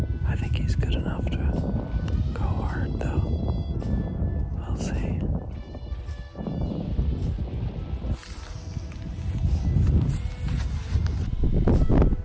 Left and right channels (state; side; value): identical; both; correlation 1.00